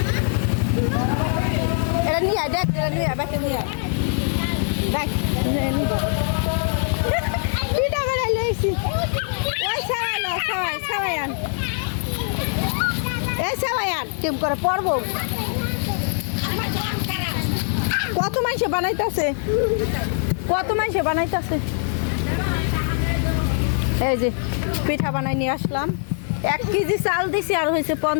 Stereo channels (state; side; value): silent; right; 64 dB below the other